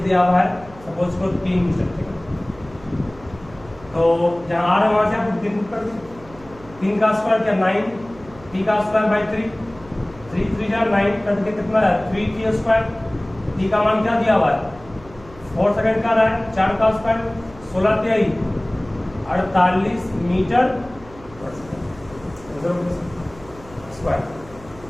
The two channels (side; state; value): right; noise; hum, 21 dB below the sound